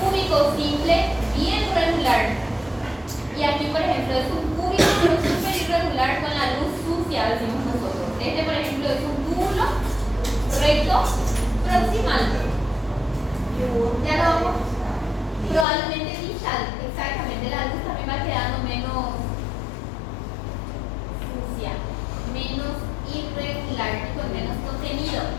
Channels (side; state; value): right; drops out; at 15.7 s